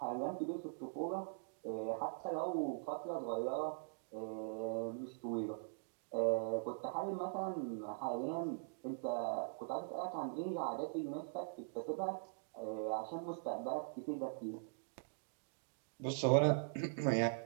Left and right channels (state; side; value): silent; left; digital silence